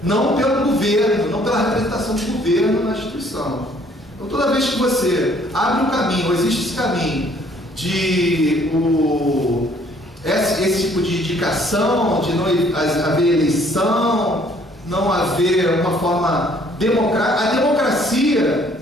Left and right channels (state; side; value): normal; both; correlation 0.61